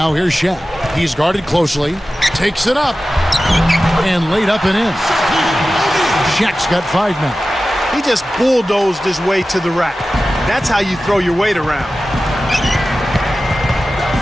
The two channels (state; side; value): normal; both; correlation 0.95